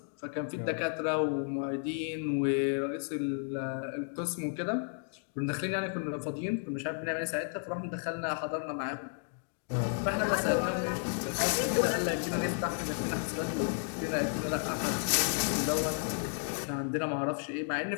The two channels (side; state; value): right; silent; 56 dB below the other